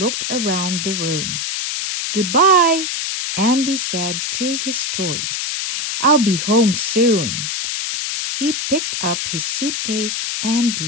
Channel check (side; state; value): left; noise; hiss, 2 dB below the sound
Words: around the room. Goodbye, Andy said to his toys. I'll be home soon. He picked up his suitcase and